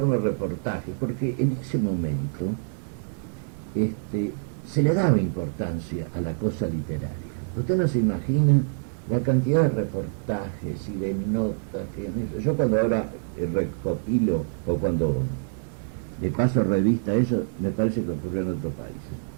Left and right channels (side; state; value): left; silent; digital silence